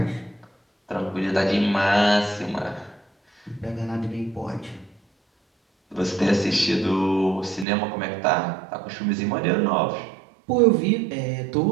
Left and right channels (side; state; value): left; drops out; at 7.7 s